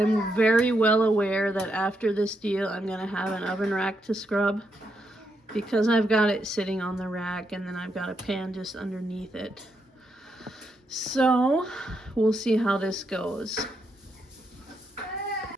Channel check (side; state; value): both; normal; correlation 0.80